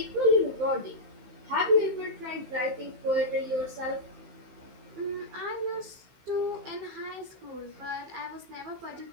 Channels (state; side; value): late; left; 15 ms